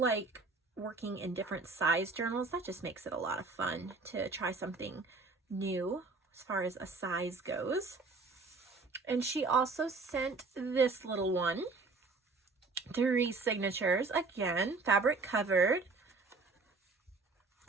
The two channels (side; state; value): left; quieter; 4.0 dB